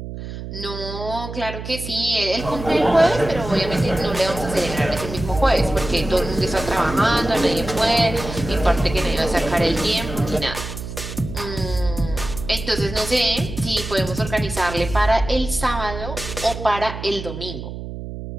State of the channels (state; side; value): noise; right; hum, 9 dB below the sound